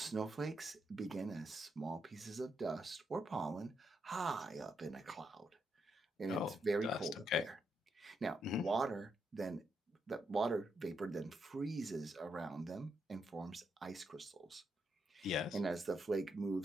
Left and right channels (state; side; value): normal; both; correlation 0.80